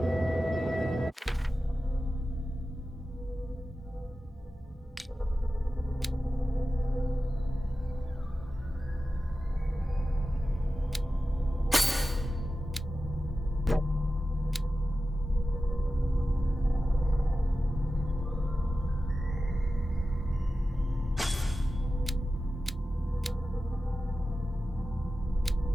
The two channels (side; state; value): both; normal; correlation 0.94